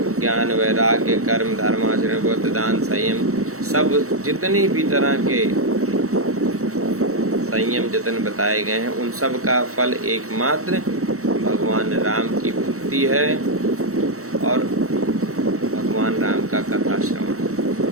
ज्ञान वैराग्य कर्म धर्माचरण व्रत दान संयम, सब जितनी भी तरह के संयम जतन बताए गए हैं, उन सब का फल एकमात्र भगवान राम की भक्ति है और भगवान राम का कथा श्रवण।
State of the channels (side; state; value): left; late; 0.64 ms